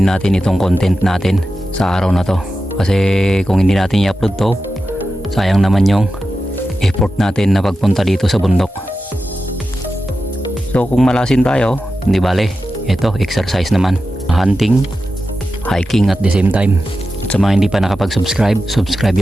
natin itong content natin sa araw na to. Kasi kung hindi natin i-upload to, sayang naman yung effort natin na pagpunta dito sa bundok. So kung malasin tayo, hindi bale, ito exercise naman, hunting, hiking at the same time. At sa mga hindi pa nakapag-subscribe, subscribe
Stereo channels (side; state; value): both; normal; correlation 0.92